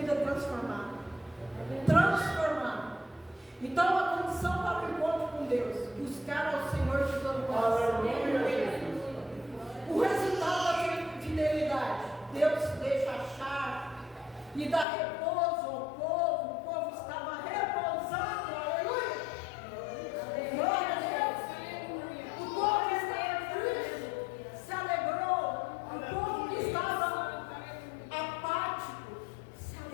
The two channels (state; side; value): drops out; right; at 14.9 s